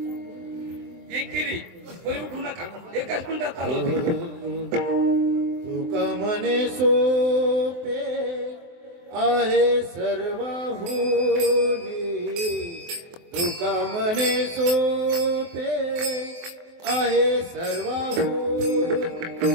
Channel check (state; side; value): late; left; 23 ms